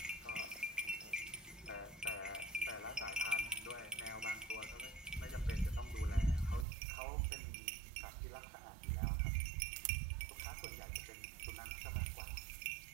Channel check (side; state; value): left; drops out; at 6.7 s